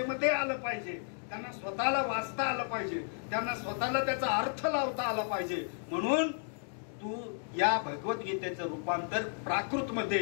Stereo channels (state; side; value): silent; right; 56 dB below the other